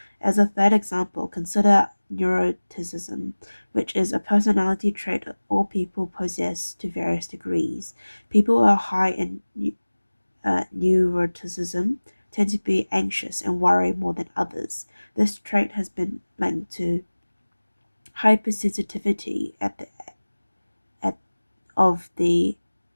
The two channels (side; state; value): both; inverted; correlation -1.00